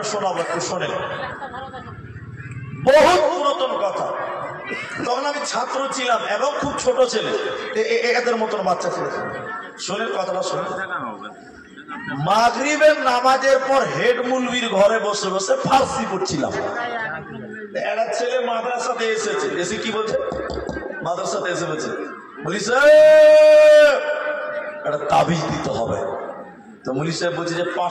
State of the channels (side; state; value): both; identical; correlation 1.00